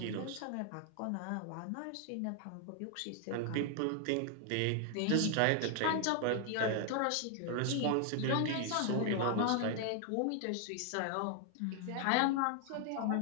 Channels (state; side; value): different; both; correlation 0.00